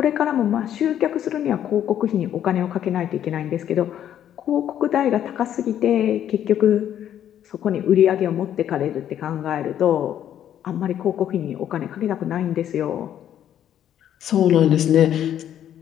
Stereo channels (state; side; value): quieter; right; 10.5 dB